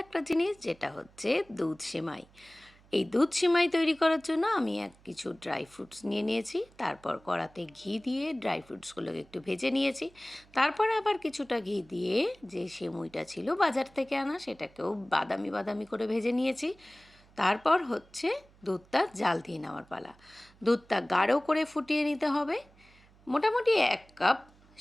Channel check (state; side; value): noise; right; hum, 28 dB below the sound